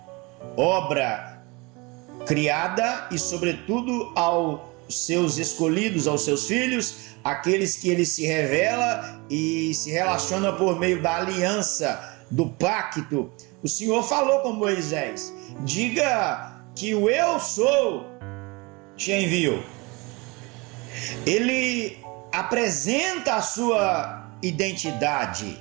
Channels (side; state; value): left; quieter; 26.1 dB